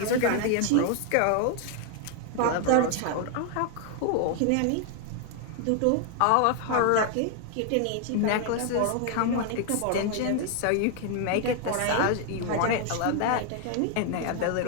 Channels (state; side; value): different; both; correlation 0.00